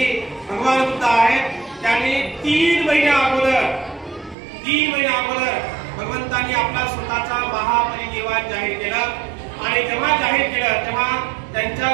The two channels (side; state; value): left; drops out; at 4.4 s